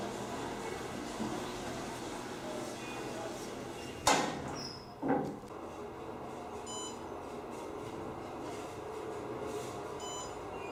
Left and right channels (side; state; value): both; identical; correlation 1.00